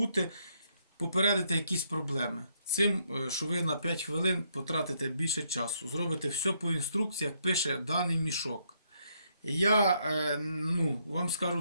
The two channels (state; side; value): inverted; both; correlation -0.74